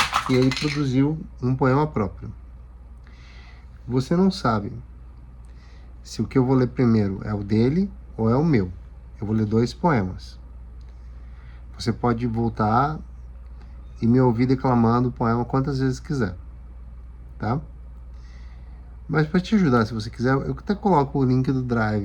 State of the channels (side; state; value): both; identical; correlation 1.00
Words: e ele produziu um poema próprio. Você não sabe se o que eu vou ler primeiro é o dele ou é o meu. Eu vou ler 2 poemas. Você pode voltar e me ouvir declamando o poema quantas vezes quiser, tá? Mas para te ajudar, se você quiser, eu até coloco o link do